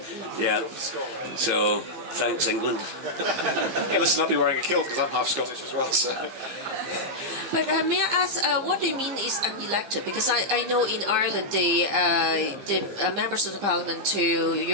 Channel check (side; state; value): left; late; 15 ms